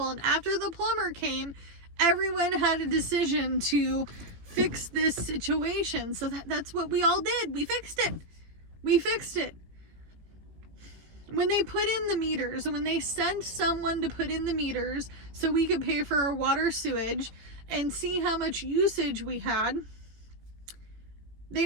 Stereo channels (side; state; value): left; late; 18 ms